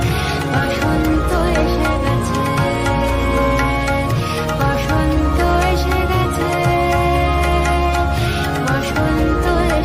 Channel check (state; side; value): identical; both; correlation 1.00